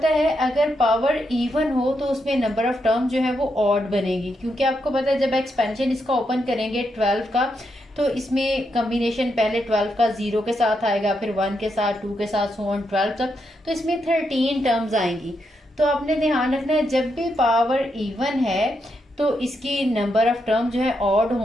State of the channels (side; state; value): both; normal; correlation 0.82